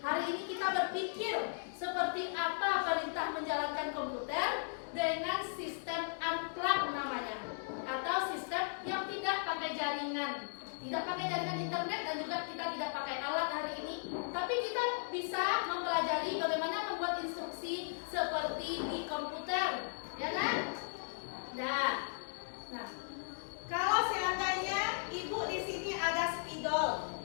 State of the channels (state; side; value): silent; right; digital silence